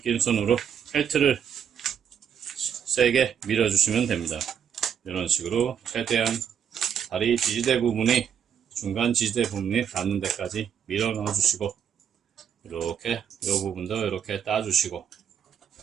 손으로 헬트를 세게 밀어주시면 됩니다. 이런 식으로 최대한 다리 지지대 부분이, 중간 지지대 부분이 닿는 데까지 밀어 넣어 주시고, 이렇게 이 부분도 이렇게 따주시고,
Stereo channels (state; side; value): quieter; left; 8.2 dB